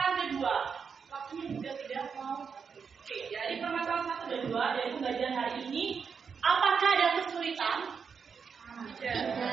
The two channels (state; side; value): quieter; left; 6.1 dB